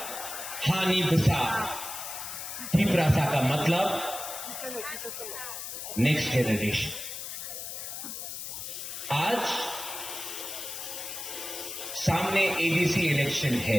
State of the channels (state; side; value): noise; left; hiss, 7 dB below the sound